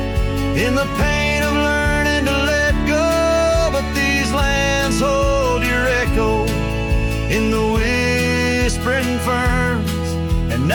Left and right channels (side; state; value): both; identical; correlation 1.00